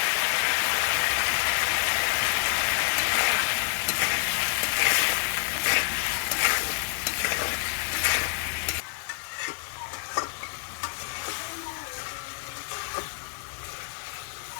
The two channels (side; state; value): right; silent; 60 dB below the other